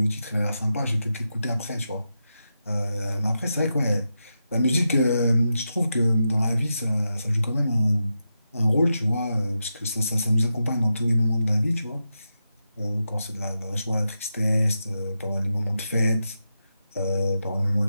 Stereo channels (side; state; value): both; inverted; correlation -0.88